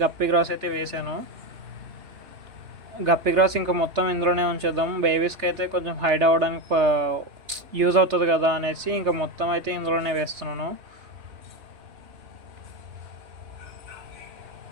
గప్పి గ్రాస్ అయితే వేసాను. గప్పి గ్రాస్ ఇంకా మొత్తం ఇందులోనే ఉంచేద్దాం, బేబీస్కి అయితే కొంచెం హైడ్ అవ్వడానికి యూజ్ అవుతుంది కదా అనేసి ఇంకా మొత్తం అయితే ఇందులోనే వేస్తున్నాను.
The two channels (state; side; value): late; left; 3.3 ms